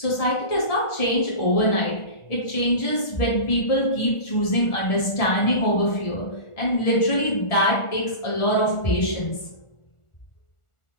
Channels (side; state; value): right; late; 1.4 ms